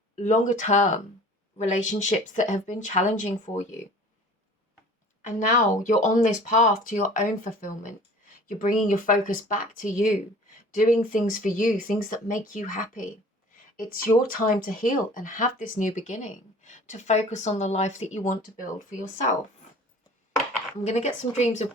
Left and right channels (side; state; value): both; normal; correlation 0.46